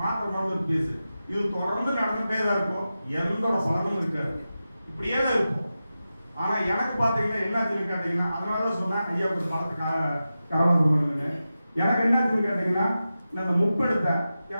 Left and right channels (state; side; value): inverted; both; correlation -0.92